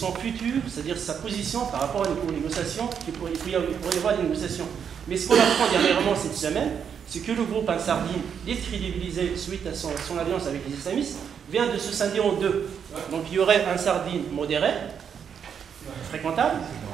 futur, c'est-à-dire sa position par rapport aux négociations, il pourrait y avoir des négociations. Mais ce qu'on apprend dernièrement cette semaine, c'est que le groupe Ansar Din, décrédibilisé suite à son alliance avec les islamistes, vient de se scinder en deux. Donc il y aurait Ansar Din modéré, fréquentable,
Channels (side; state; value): left; quieter; 7.5 dB